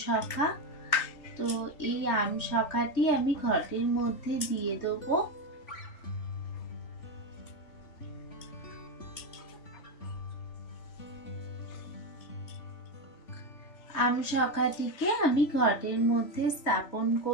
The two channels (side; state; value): right; late; 3.4 ms